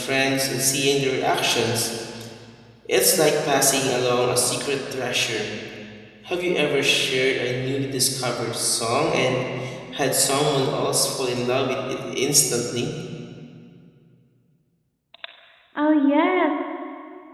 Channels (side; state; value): both; identical; correlation 1.00